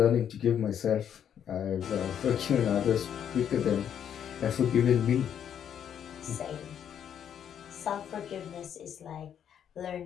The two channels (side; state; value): right; quieter; 9.0 dB